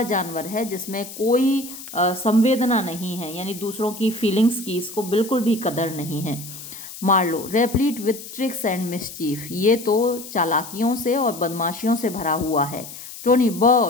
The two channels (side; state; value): left; noise; hiss, 13 dB below the sound